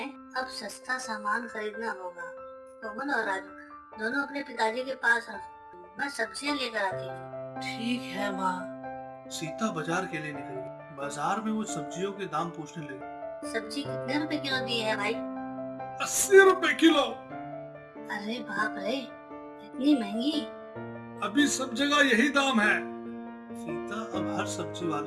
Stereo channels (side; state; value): both; identical; correlation 1.00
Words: अब सस्ता सामान खरीदना होगा। कोमल और राजू दोनों अपने पिताजी के पास रहो, मैं सब्जियां लेकर आती हूँ। ठीक है माँ। सीता बाजार के लिए निकल गई। बाजार में वो सब्जियों के दाम पूछने लगी। सब्जी कितने रुपए किलो दी है भाई? 80 रुपए किलो। अरे बाप रे, इतनी महंगी? अभी सब जगह यही दाम है। सीता अब हर सब्जी